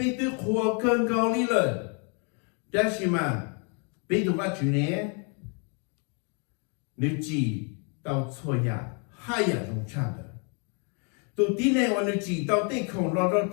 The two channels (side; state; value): right; quieter; 37.4 dB